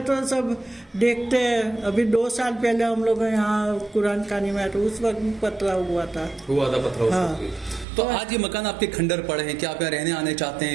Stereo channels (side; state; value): left; drops out; at 7.9 s